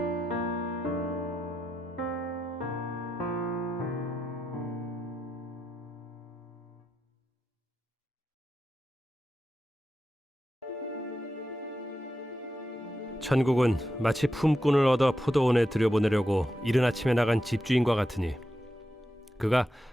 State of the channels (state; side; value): normal; both; correlation 0.87